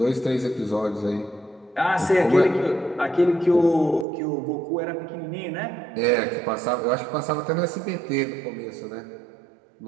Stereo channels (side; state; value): left; drops out; at 4.0 s